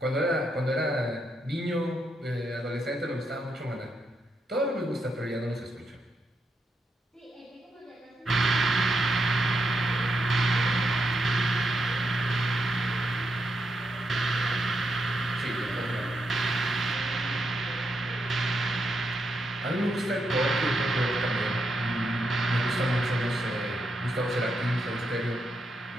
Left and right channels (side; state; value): both; normal; correlation 0.82